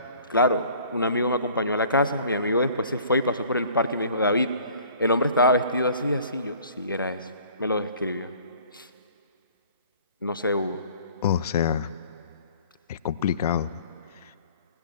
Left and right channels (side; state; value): both; inverted; correlation -0.51